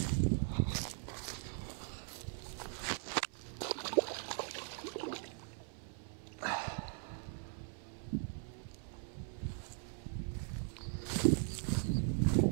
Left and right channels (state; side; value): silent; left; 51 dB below the other